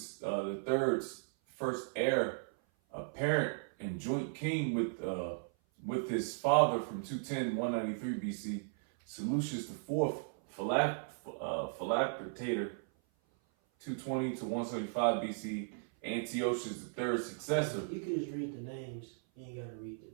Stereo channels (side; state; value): left; silent; 54 dB below the other